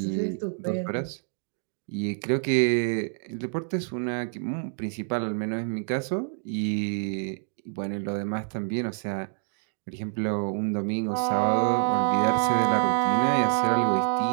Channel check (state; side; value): silent; left; 60 dB below the other